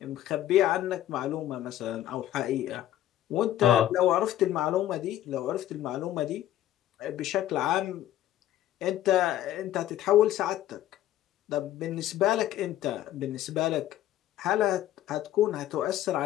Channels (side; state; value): right; quieter; 12.9 dB